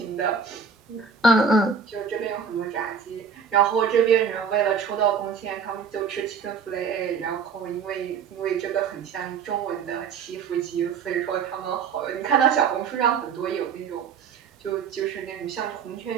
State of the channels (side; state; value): left; quieter; 6.1 dB